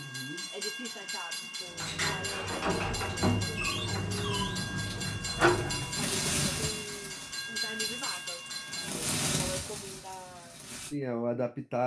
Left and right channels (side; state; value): both; identical; correlation 1.00